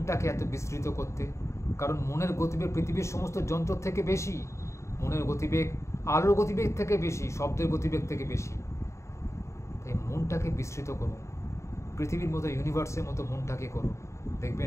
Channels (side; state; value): right; late; 0.14 ms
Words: এত বিস্তৃত করতে? কারণ মনের গতিবেগ পৃথিবীর সমস্ত যন্ত্র থেকে বেশি। মনের গতিবেগ আলোর গতিবেগ থেকে বেশি, শব্দের গতিবেগ থেকে বেশি। তাই মনটাকে বিস্তৃত করুন। পৃথিবীর মতো, ইউনিভার্সের মতো মনটাকে করুন।